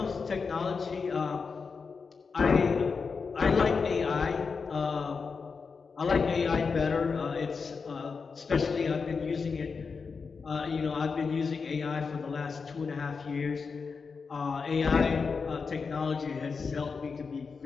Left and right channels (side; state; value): right; quieter; 5.1 dB